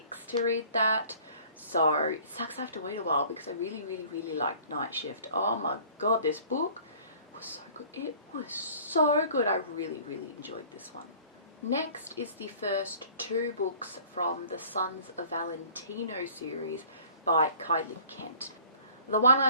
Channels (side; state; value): both; inverted; correlation -0.50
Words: to read that. So it sucks I have to wait a while because I really, really, really liked Night Shift. Oh my god, this book was so good. It was so good. I really, really enjoyed this one. Next is the first 2 books from the Sons of Valentino series by Kylie Kent. The one